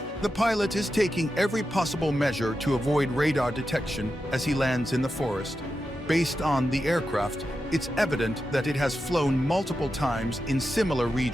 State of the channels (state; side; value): normal; both; correlation 0.89